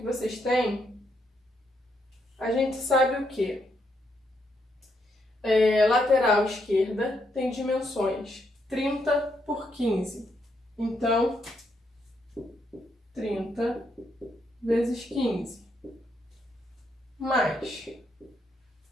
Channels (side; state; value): both; normal; correlation 0.77